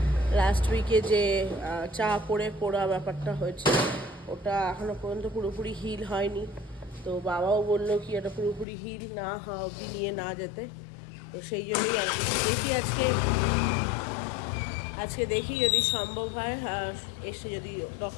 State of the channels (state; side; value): drops out; right; at 8.7 s